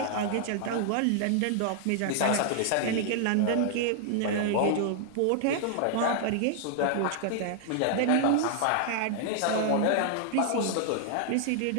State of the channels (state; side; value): different; both; correlation -0.01